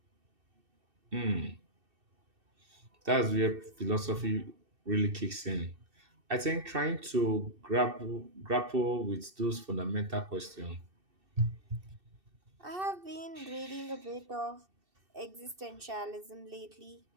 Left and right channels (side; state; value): left; late; 2.7 ms